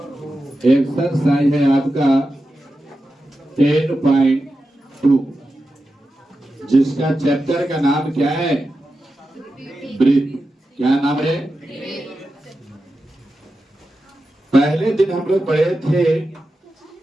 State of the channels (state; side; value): normal; both; correlation 0.91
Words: एक्सरसाइज है आपका 10.2, जिसका चैप्टर का नाम क्या है? ब्रीथ। क्या नाम है? पहले दिन हम लोग पढ़े थे